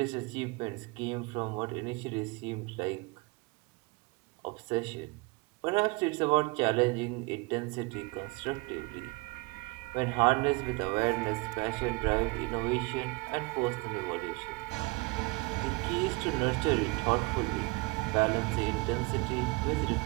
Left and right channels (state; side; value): quieter; left; 26.2 dB